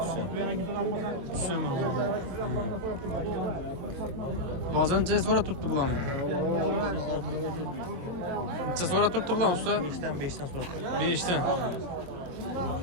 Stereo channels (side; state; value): left; late; 22 ms